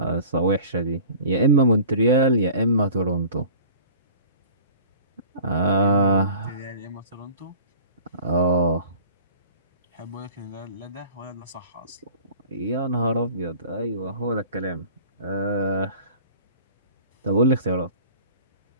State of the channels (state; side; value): inverted; both; correlation -0.44